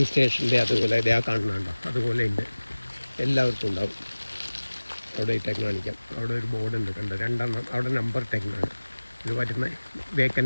സ്റ്റേഷൻ്റെ അതുപോലെ ഇതേ കാണുന്നുണ്ടോ, അതുപോലെ ഉണ്ട്. എല്ലാവർക്കും ഉണ്ടാവും. അവിടെ ഇട്ടേക്ക് കാണിക്കാം. അവിടെ ഒരു ബോർഡ് ഉണ്ട്, കണ്ടോ, 2 അവിടെ നമ്പർ ഇട്ടേക്കാണ്. ഇത് പറ്റുന്ന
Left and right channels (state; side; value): inverted; both; correlation -1.00